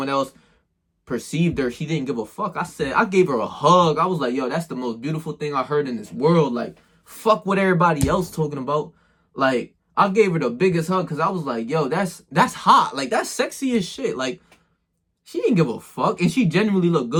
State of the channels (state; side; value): identical; both; correlation 1.00